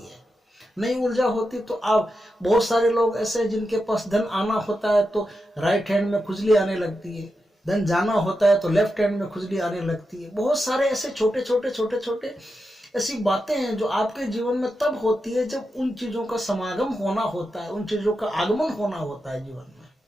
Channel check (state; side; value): normal; both; correlation 0.88